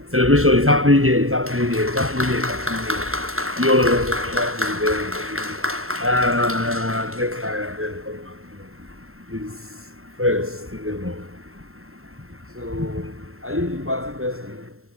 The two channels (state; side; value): late; left; 0.62 ms